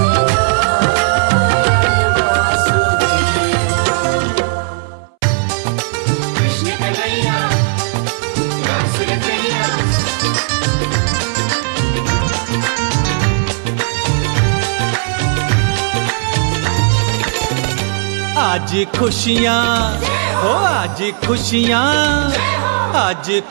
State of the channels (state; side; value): silent; left; 68 dB below the other